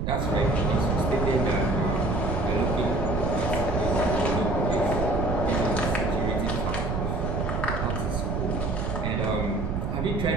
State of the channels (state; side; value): noise; right; rumble, 1 dB below the sound